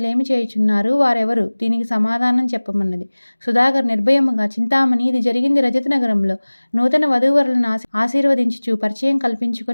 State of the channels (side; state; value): both; inverted; correlation -1.00